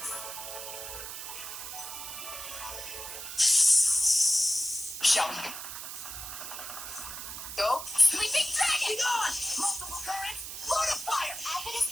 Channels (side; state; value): right; noise; hiss, 8 dB below the sound